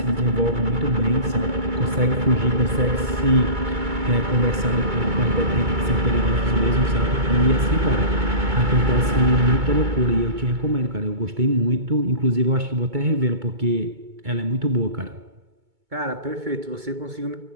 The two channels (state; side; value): late; left; 2.2 ms